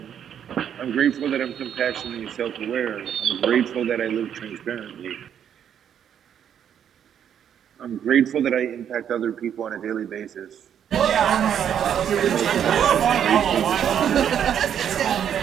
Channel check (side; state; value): left; quieter; 9.0 dB